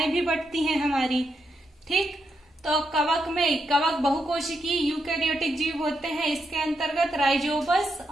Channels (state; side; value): normal; both; correlation 0.82